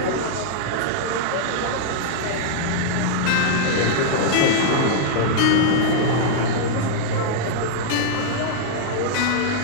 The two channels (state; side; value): different; both; correlation -0.02